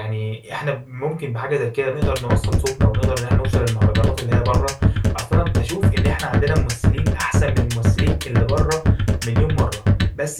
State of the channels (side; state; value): both; identical; correlation 1.00